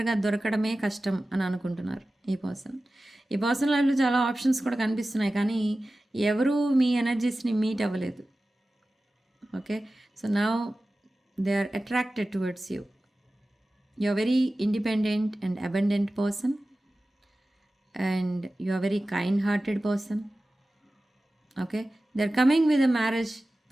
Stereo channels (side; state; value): both; normal; correlation 0.96